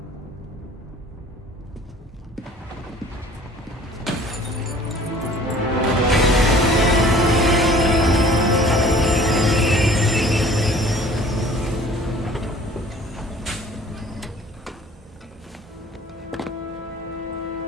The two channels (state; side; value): normal; both; correlation 0.51